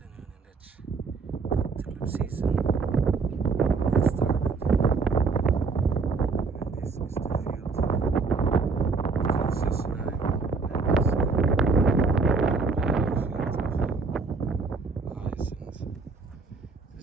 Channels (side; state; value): left; quieter; 4.5 dB